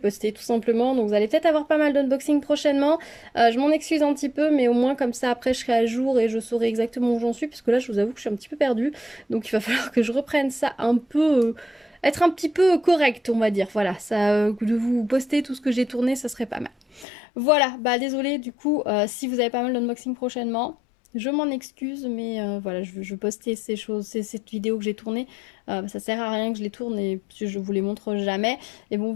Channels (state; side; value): drops out; right; at 17.1 s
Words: tout simplement. Donc vous allez peut-être avoir pas mal d'unboxings prochainement. Je m'en excuse un petit peu, mais au moins comme ça après je serai à jour et je saurai exactement où j'en suis, puisque là je vous avoue que je suis un petit peu perdue. Donc il va falloir que je reprenne ça un peu... être un petit peu correct, on va dire. Voilà, ça, de vous poster tout ce que j'ai tourné, ça serait pas mal. Voilà, désolé du coup, si vous avez pas mal d'unboxing prochainement. Je m'en excuse, mais voilà, je postais ces choses, cette vidéo que j'ai tournée. Ça sert à rien que je les tourne et je vous les montre jamais. Et bon,